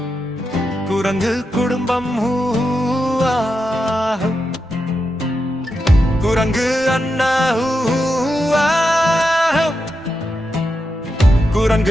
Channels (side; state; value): both; normal; correlation 0.87